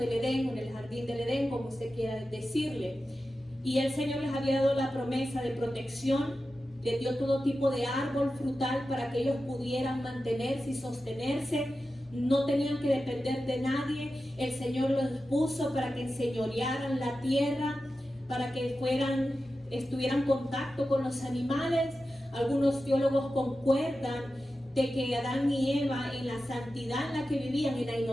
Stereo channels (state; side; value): normal; both; correlation 0.92